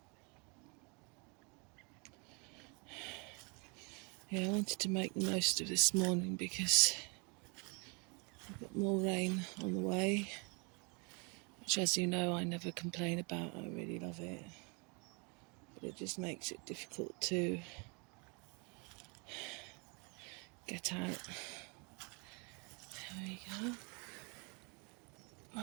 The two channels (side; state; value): left; quieter; 32.5 dB